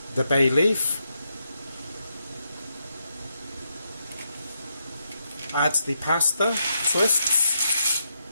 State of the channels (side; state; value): both; inverted; correlation -0.82